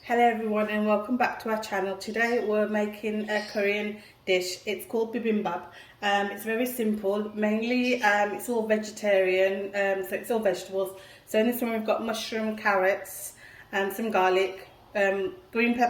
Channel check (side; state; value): both; identical; correlation 1.00